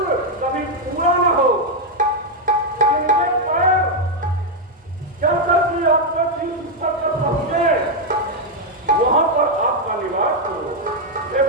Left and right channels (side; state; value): both; normal; correlation 0.01